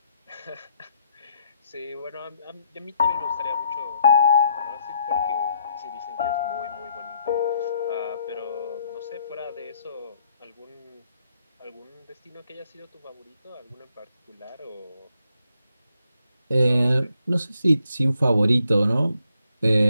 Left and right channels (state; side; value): inverted; both; correlation -0.74